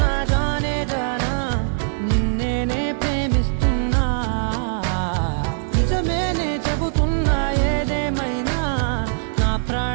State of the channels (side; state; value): left; silent; digital silence